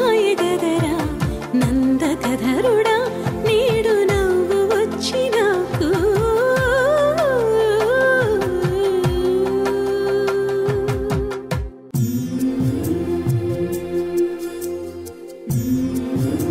గదరా నందకధరుడా నేడు నవ్వు వచ్చి నాకు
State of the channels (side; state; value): both; identical; correlation 1.00